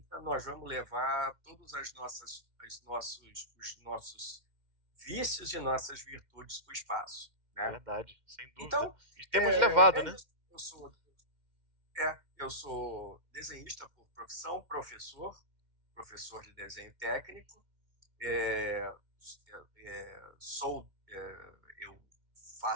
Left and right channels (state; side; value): late; left; 2.1 ms